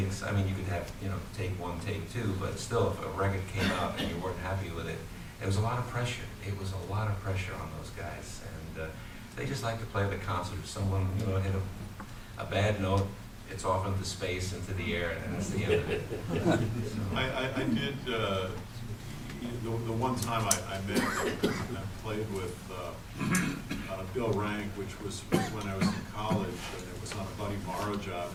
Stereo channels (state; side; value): identical; both; correlation 1.00